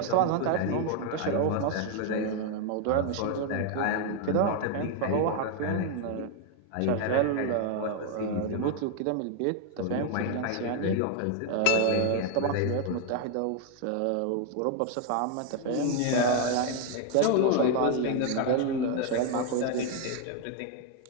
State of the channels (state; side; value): different; both; correlation 0.01